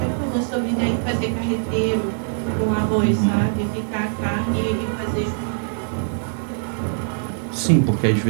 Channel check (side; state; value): left; silent; digital silence